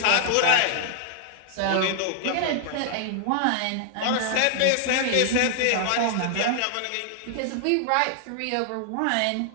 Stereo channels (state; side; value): different; both; correlation 0.00